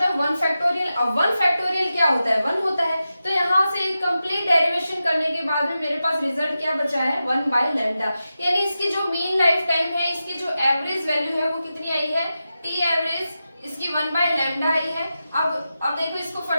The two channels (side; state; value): both; inverted; correlation -0.91